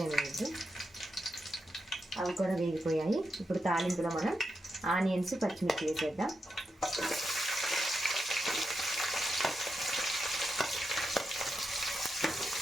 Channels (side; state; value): both; normal; correlation 0.86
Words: వేయద్దు. అవి కూడా వేగిపోయాయి. ఇప్పుడు తాలింపులో మనం ఆనియన్స్, పచ్చిమిర్చి వేసేద్దాం.